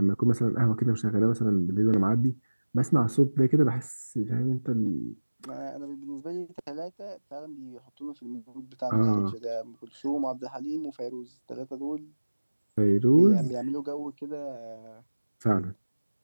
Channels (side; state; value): both; inverted; correlation -1.00